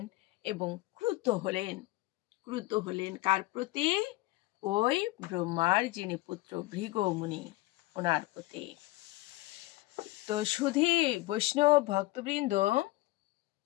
এবং ক্রুদ্ধ হলেন কার প্রতি? ওই ব্রহ্মার যিনি পুত্র ভৃগুমুনি, ওনার প্রতি। তো শুধু বৈষ্ণব ভক্তবৃন্দ,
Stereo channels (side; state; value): right; quieter; 19.5 dB